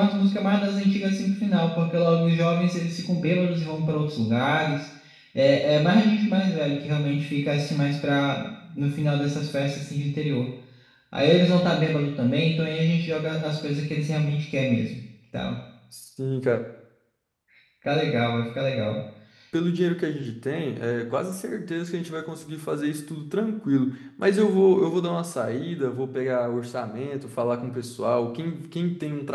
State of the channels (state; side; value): identical; both; correlation 1.00